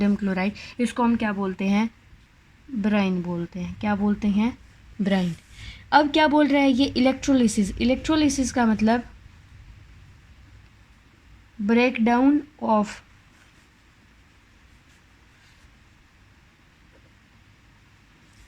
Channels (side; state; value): both; identical; correlation 1.00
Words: chloride, इसको हम क्या बोलते हैं? ब्राइन बोलते हैं। क्या बोलते हैं? ब्राइन। अब क्या बोल रहा है ये? इलेक्ट्रोलिसिस। इलेक्ट्रोलिसिस का मतलब break down of